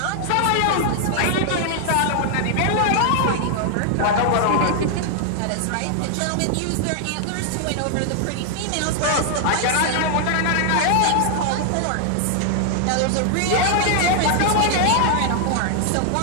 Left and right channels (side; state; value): both; different; correlation 0.00